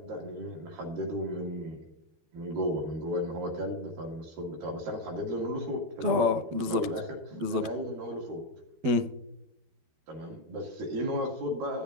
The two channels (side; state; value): left; late; 12 ms